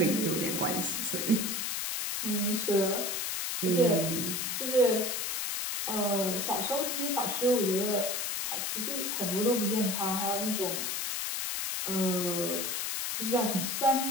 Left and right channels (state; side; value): noise; left; hiss, 1 dB below the sound